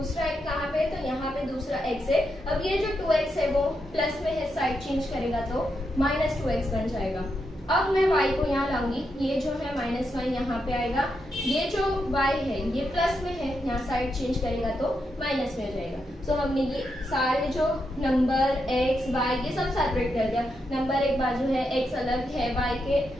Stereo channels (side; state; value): both; normal; correlation 0.83